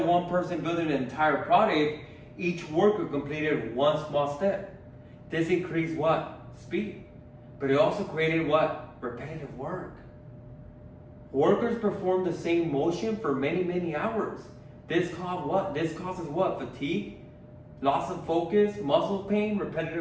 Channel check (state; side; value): identical; both; correlation 1.00